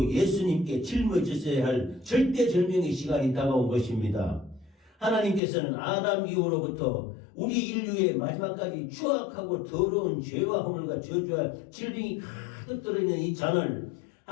예수님께 짊어지셔야 할 절대절명의 시간이 다가온 것입니다. 하나님께서는 아담 이후로부터 우리 인류의 마지막까지 추악하고 더러운 죄와 허물과 저주와 질병이 가득 들어있는 이 잔을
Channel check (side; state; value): right; drops out; at 5.4 s